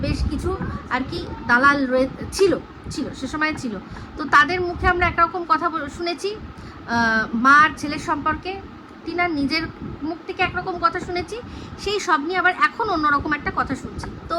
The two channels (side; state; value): both; identical; correlation 1.00